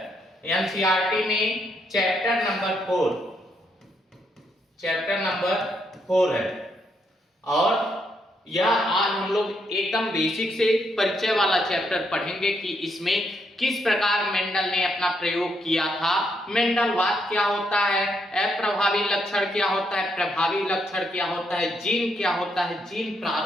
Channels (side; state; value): both; normal; correlation 0.77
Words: एनसीईआरटी में। चैप्टर नंबर 4 है और यह आज हम लोग एकदम बेसिक से परिचय वाला चैप्टर पढ़ेंगे कि इसमें किस प्रकार मेंडल ने अपना प्रयोग किया था, मेंडलवाद क्या होता है, अप्रभावी लक्षण क्या होता है, प्रभावी लक्षण क्या होता है, जीन क्या होता है, जीन